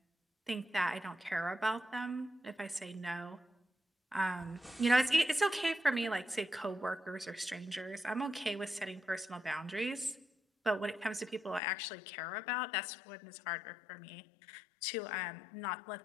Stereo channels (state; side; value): drops out; right; at 11.6 s